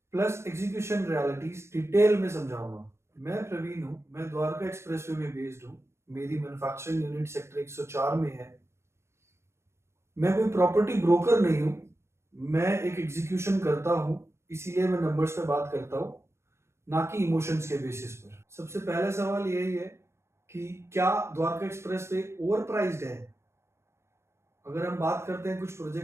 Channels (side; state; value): left; late; 0.13 ms